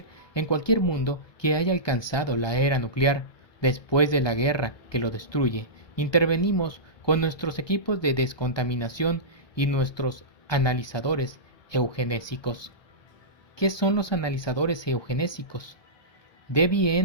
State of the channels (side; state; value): right; late; 1.2 ms